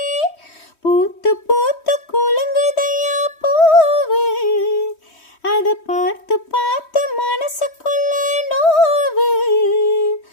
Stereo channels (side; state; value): right; late; 3.1 ms